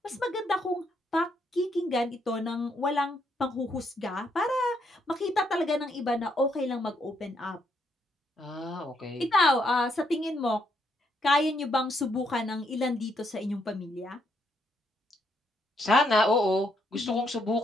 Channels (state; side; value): normal; both; correlation 0.75